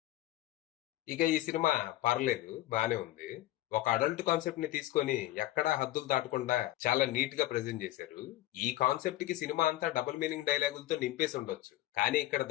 ఇక ఈ సినిమా పర్లేదు, బానే ఉంది. ఒక అడల్ట్ కాన్సెప్ట్ ని తీసుకొని ఎక్కడా హద్దులు దాటకుండా చాలా నీట్ గా ప్రెజెంట్ చేశారు. ఈ కాన్సెప్ట్ కి సినిమా అంతా డబుల్ మీనింగ్ డైలాగులతో నింపేసి ఉండొచ్చు. కానీ ఇక్కడ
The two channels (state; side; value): quieter; right; 15.8 dB